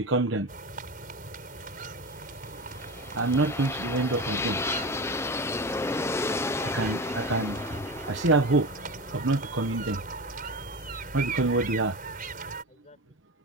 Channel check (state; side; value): normal; both; correlation 0.25